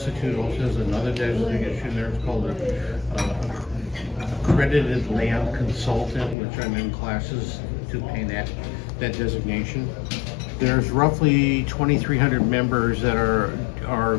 also has another designation there. It's called accredited land consultant, which I'm in classes to obtain that designation. There's roughly 2,300 members that are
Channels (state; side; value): drops out; right; at 6.4 s